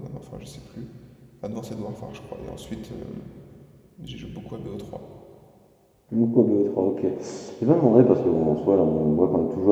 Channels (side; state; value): both; identical; correlation 1.00